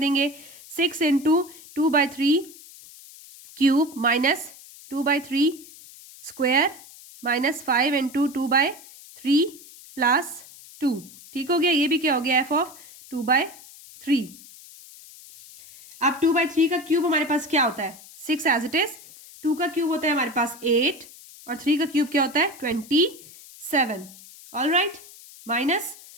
6 into 2/3 cube minus 2/3 square minus 5 into 2/3 plus 2, ठीक हो गया। ये भी क्या हो गया? f of 2/3। अब 2/3 का क्यूब हमारे पास क्या होता है? 6 एज इट इज। 2 का क्यूब होता है हमारे पास 8 और 3 का क्यूब क्या होता है? 27। ऑल राइट, माइनस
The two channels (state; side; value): noise; left; hiss, 20 dB below the sound